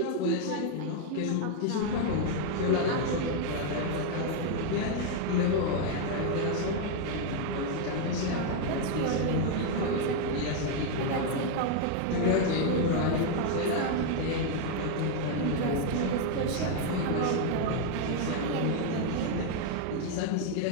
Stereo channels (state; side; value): different; both; correlation 0.00